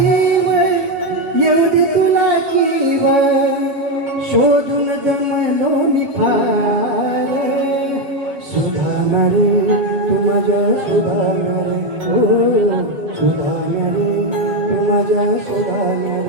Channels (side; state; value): left; late; 7.2 ms